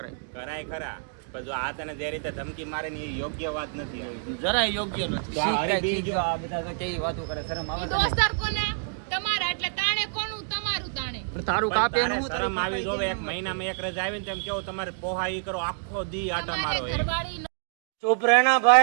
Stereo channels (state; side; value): silent; left; digital silence